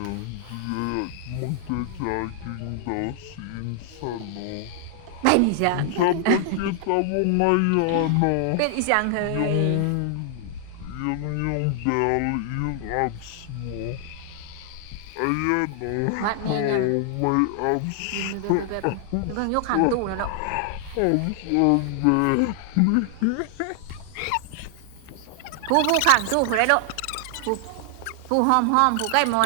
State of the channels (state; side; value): different; both; correlation 0.00